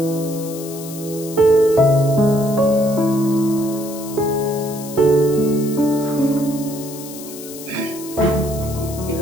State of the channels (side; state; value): left; noise; hiss, 14 dB below the sound